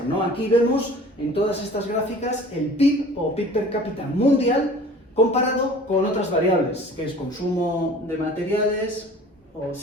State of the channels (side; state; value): both; normal; correlation 0.46